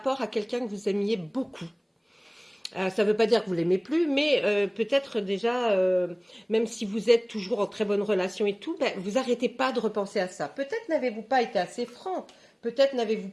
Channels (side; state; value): both; identical; correlation 1.00